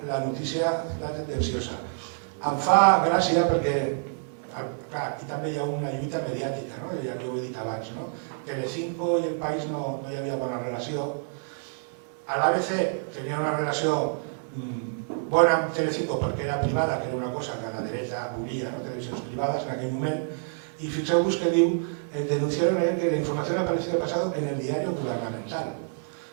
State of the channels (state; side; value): silent; left; digital silence